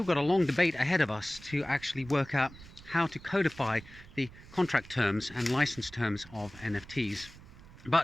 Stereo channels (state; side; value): noise; right; rumble, 20 dB below the sound